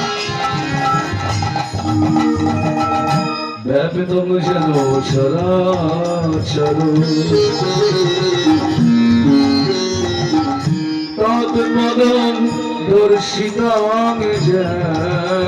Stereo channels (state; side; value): identical; both; correlation 1.00